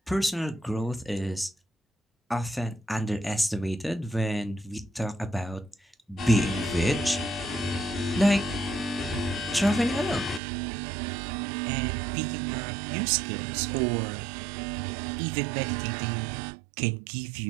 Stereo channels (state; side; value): drops out; left; at 10.4 s